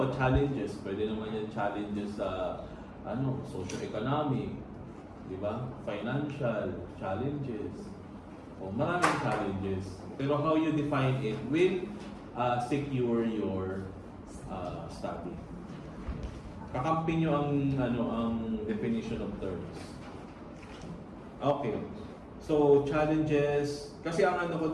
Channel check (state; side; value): identical; both; correlation 1.00